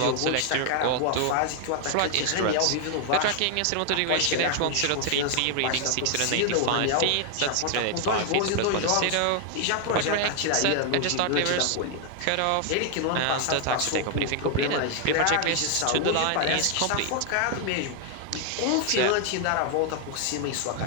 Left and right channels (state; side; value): different; both; correlation 0.00